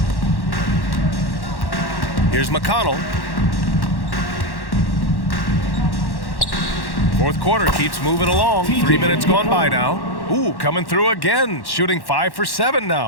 Here's McConnell. Fourth quarter keeps moving along. 3 minutes gone by now. Ooh, coming through again. Shooting 5 for 7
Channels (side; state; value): right; late; 1.1 ms